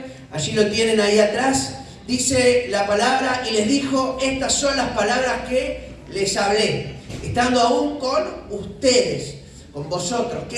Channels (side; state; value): both; identical; correlation 1.00